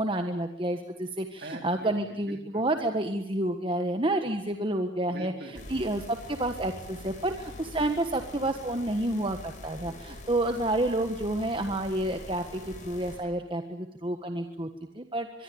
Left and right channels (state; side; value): normal; both; correlation 0.51